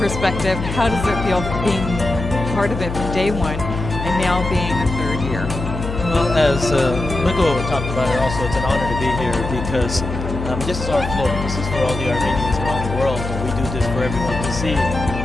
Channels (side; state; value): left; noise; hum, 6 dB below the sound